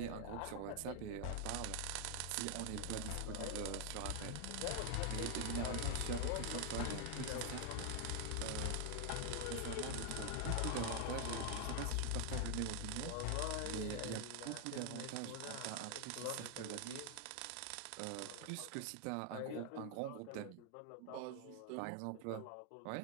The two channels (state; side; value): different; both; correlation 0.00